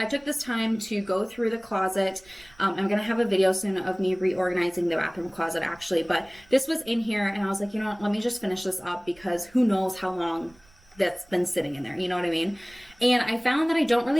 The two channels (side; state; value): right; noise; rumble, 28 dB below the sound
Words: took this time to go through the closet. I'm going to have a video soon of me reorganizing the bathroom closet actually, but this was in here and I was like, you know what, let me just finish this up because who knows how long that's been sitting in there, you know what I mean? And I found that I don't